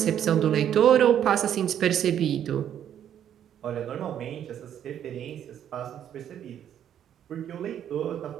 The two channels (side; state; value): left; quieter; 9.9 dB